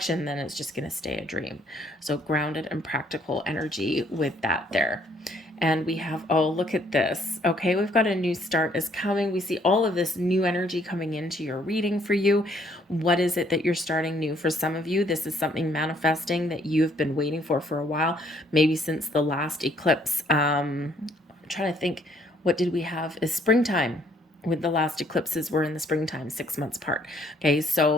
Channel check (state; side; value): normal; both; correlation 0.65